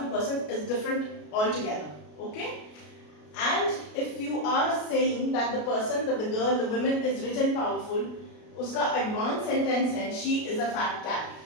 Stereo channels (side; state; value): right; late; 33 ms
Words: person is different altogether. Okay? And if you are saying that the person, that the girl, the woman is rich and powerful, uska advanced sentence hai, she is a fat cat.